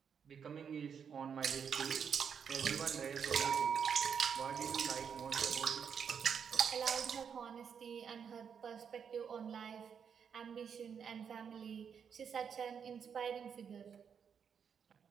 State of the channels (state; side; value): quieter; left; 7.1 dB